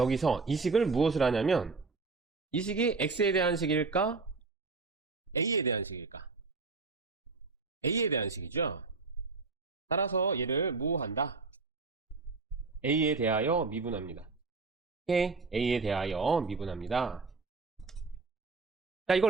이 식을 무엇을 하냐면 이 식이 x에 대한 식일까? a에 대한 식일까? a에 대한 식이죠. 따라서 얘를 뭐 한다? a에 대하여 미분합니다. 오케이? a에 대하여 미분합니다. 자,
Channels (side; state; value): left; quieter; 4.1 dB